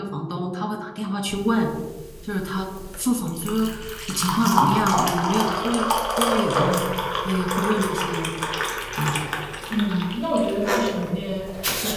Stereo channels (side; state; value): both; identical; correlation 1.00